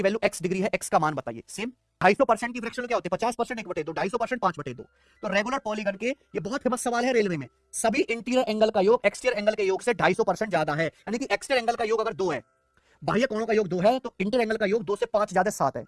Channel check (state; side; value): identical; both; correlation 1.00